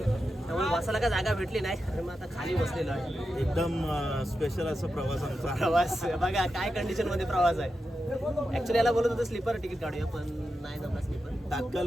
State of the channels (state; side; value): normal; both; correlation 0.89